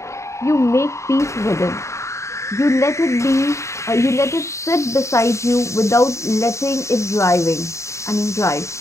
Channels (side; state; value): right; late; 0.14 ms